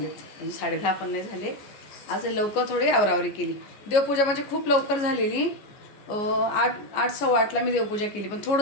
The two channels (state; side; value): late; right; 14 ms